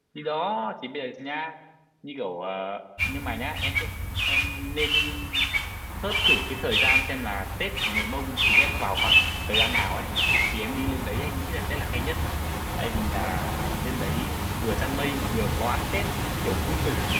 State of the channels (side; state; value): both; identical; correlation 1.00